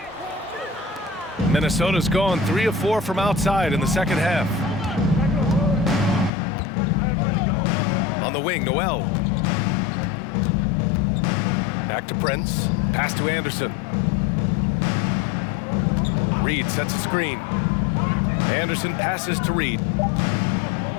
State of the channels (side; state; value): right; drops out; at 6.3 s